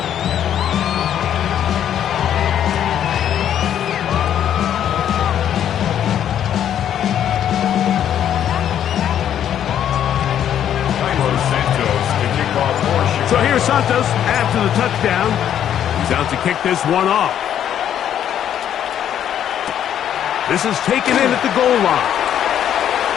So here's Santos after the touchdown. He's out to kick this one off. This is taken in at the goal line.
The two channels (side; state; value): right; quieter; 10.0 dB